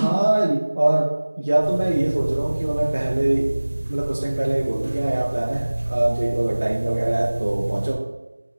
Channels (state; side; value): inverted; both; correlation -1.00